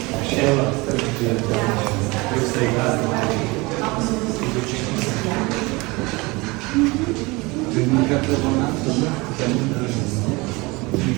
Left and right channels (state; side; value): quieter; left; 24.4 dB